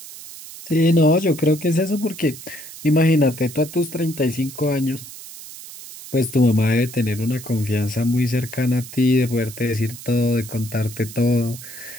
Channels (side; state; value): right; noise; hiss, 14 dB below the sound